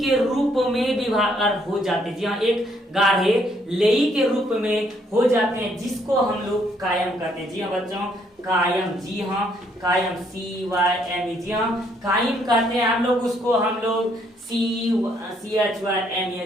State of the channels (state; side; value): normal; both; correlation 0.69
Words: रूप में विभाग हो जाते हैं। जी हाँ, एक गाढ़े लेई के रूप में हो जाते हैं, जिसको हम लोग कायम कहते हैं। जी हाँ बच्चों, कायम, जी हाँ कायम, CYM, जी हाँ कायम कहते हैं हम लोग उसको, हम लोग